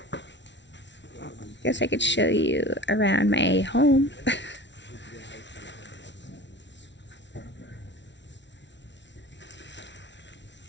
Guess I could show you around my home.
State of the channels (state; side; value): late; right; 0.52 ms